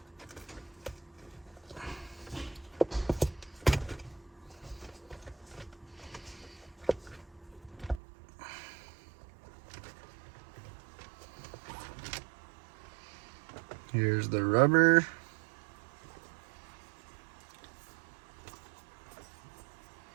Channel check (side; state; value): left; drops out; at 8.0 s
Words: Here's the rubber.